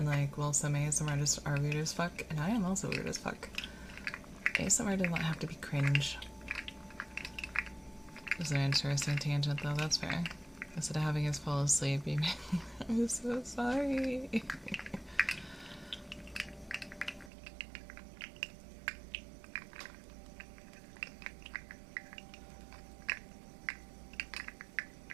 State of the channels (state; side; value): drops out; left; at 17.3 s